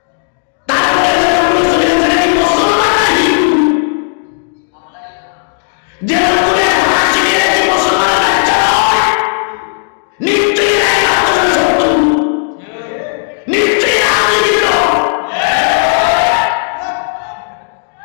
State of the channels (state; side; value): silent; right; digital silence